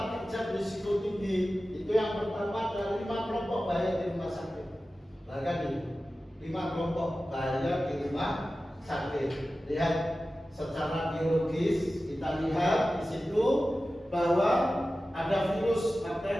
kerja berisiko tinggi. Itu yang pertama ada 5 kelompok bahaya di rumah sakit. Nah kan ini 5 kelompok bahaya di rumah sakit. Lihat secara biologis, kita lihat di situ bahwa ada virus,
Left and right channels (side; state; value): both; normal; correlation 0.95